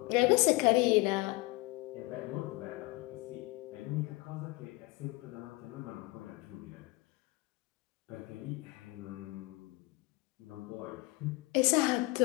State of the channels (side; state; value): right; quieter; 22.4 dB